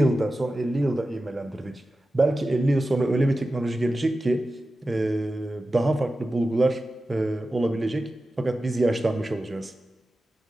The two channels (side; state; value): both; normal; correlation 0.94